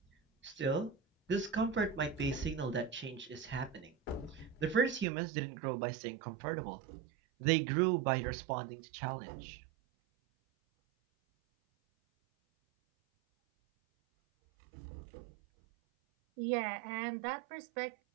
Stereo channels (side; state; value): left; drops out; at 5.1 s